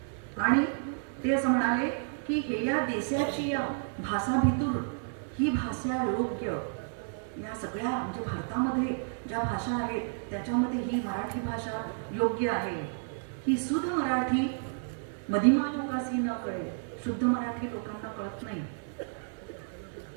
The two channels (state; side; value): silent; left; digital silence